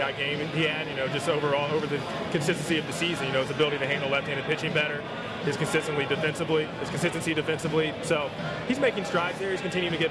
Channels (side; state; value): both; identical; correlation 1.00